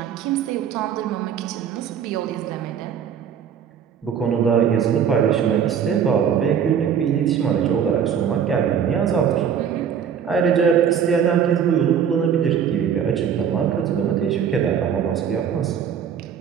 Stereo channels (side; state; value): left; quieter; 8.0 dB